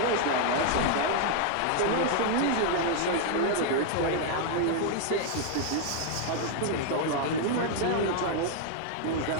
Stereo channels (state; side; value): different; both; correlation 0.00